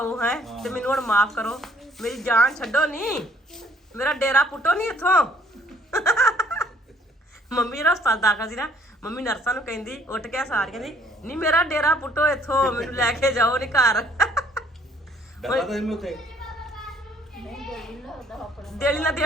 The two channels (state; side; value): normal; both; correlation 0.62